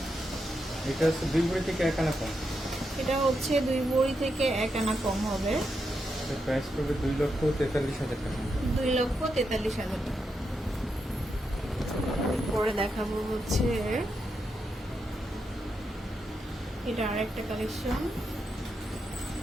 এটা হচ্ছে 2 ভরি থেকে 1 আনা কম। এটা হচ্ছে 2 ভরি থেকে 1 আনা কম হবে। এর প্রাইস পড়বে 2,43,000 টাকা। 2,43,000 টাকা। পরে দেখাবো হচ্ছে এটা আরেকটা কালেকশন।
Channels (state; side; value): normal; both; correlation 0.84